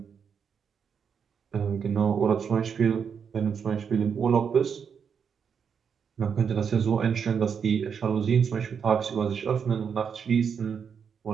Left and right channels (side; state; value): left; quieter; 6.8 dB